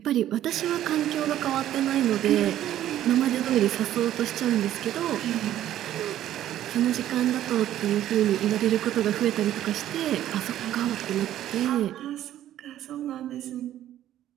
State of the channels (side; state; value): left; quieter; 12.4 dB